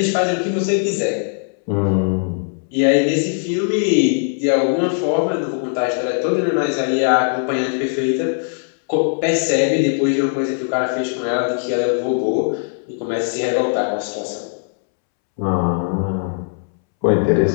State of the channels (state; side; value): silent; right; 66 dB below the other